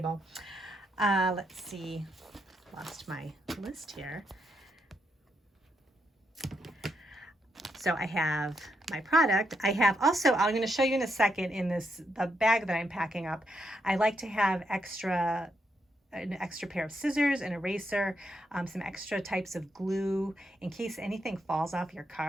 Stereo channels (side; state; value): both; normal; correlation 0.80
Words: Let's see, lost my list here. So I have my product. I have also, I'm going to show you in a second in the bag that I'm packing up, I like to have an extra pair of scissors, an eraser, some extra types of glue in case anything falls off your